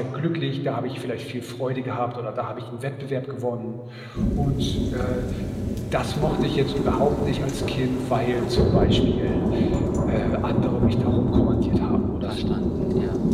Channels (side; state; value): both; identical; correlation 1.00